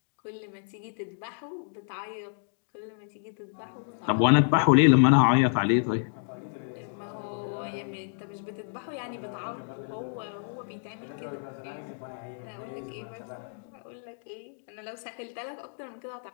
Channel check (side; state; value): right; silent; digital silence